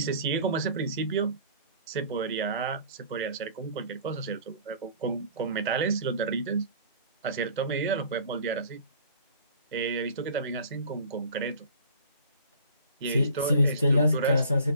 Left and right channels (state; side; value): inverted; both; correlation -0.47